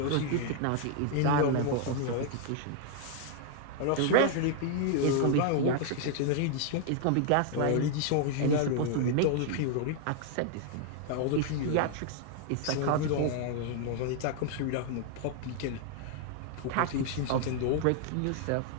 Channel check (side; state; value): both; different; correlation 0.00